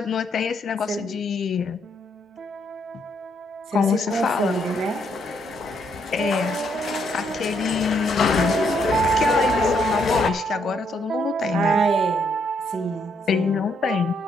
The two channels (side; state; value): both; normal; correlation 0.73